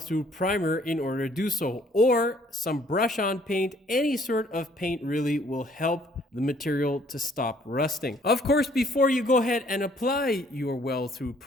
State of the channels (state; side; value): normal; both; correlation 0.61